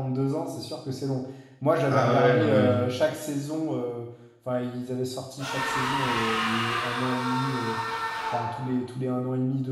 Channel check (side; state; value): both; identical; correlation 1.00